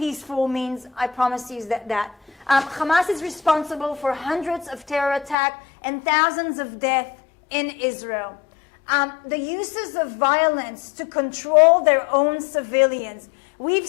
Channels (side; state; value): right; drops out; at 5.4 s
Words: means, I promise you that. Hamas is responsible for hundreds of terror attacks and thousands of deaths in Israel. The uses of violence to control their own civilians. We've